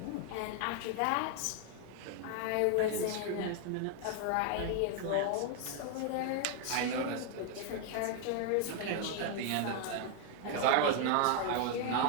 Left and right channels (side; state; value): both; different; correlation 0.00